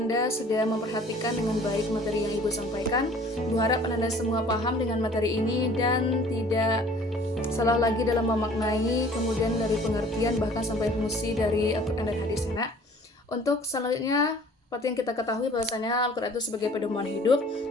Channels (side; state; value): both; normal; correlation 0.51